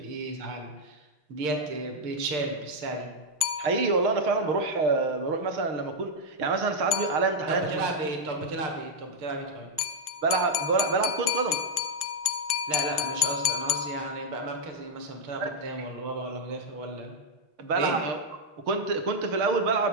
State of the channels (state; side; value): late; left; 6.5 ms